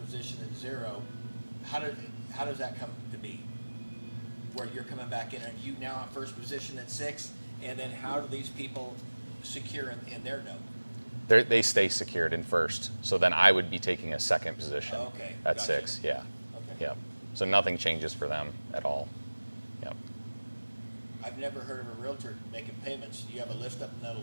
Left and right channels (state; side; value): inverted; both; correlation -1.00